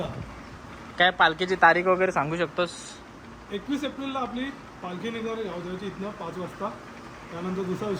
काय पालखीची तारीख वगैरे सांगू शकतोस? 21 एप्रिलला आपली पालखी निघणार आहे गावदेवाची इथनं 5 वाजता. त्यानंतर दुसऱ्या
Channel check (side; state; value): both; identical; correlation 1.00